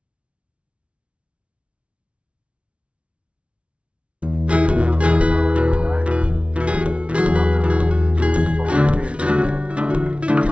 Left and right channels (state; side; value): late; left; 0.061 ms